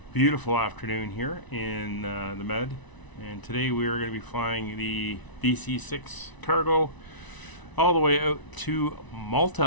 beautiful afternoon here in the Med, and today we are going to be flying the DC-6 Cargo all the way out to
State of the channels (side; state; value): right; late; 1.0 ms